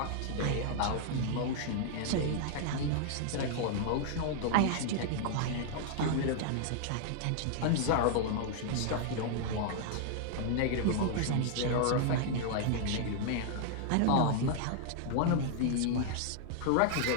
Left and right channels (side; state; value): both; different; correlation 0.00